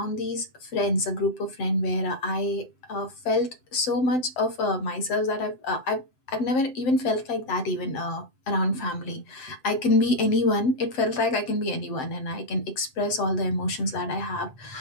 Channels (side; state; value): right; late; 7.7 ms